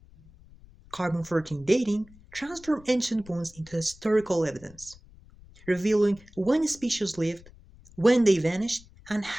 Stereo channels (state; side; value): noise; left; rumble, 23 dB below the sound